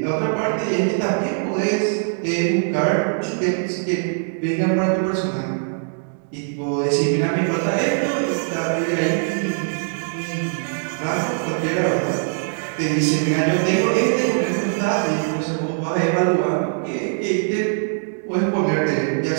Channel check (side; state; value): left; silent; 64 dB below the other